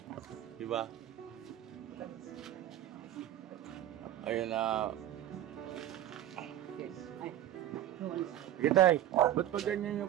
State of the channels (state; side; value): quieter; left; 12.5 dB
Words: Diba? Ayun na. Sige tay, ba't pa ganyan